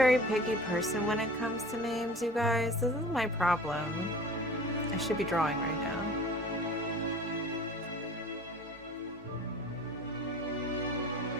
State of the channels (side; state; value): both; normal; correlation 0.42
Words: picky person when it comes to names, you guys. This is my problem. I should be drawing right now.